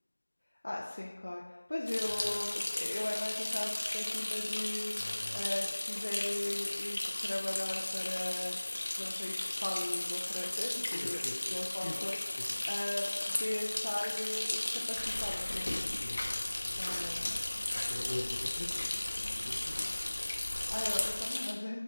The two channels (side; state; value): both; inverted; correlation -1.00